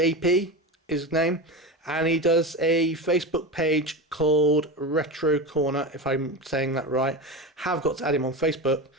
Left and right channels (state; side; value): normal; both; correlation 0.23